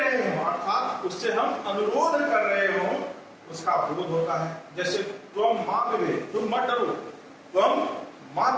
हो, अर्थात उससे हम अनुरोध कर रहे हो, उसका बोध होता है। जैसे तुम मां विभे, तुम मत डरो, तुम मां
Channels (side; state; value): both; identical; correlation 1.00